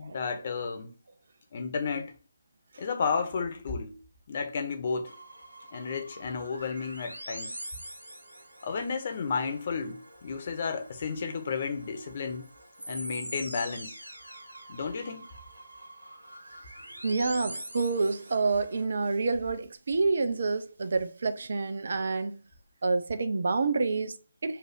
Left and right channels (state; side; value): inverted; both; correlation -0.81